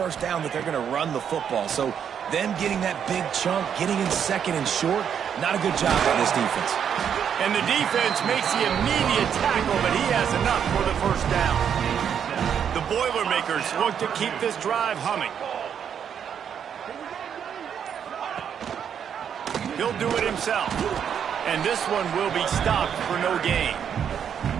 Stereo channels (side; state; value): left; quieter; 8.2 dB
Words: down that they're going to run the football. So them getting that big chunk, getting in second and short, not a good job by this defense. And the defense makes the immediate tackle, but he has enough for the first down. The Boilermakers look to keep this drive humming. He'll do it himself. And this one will be stopped for no gain.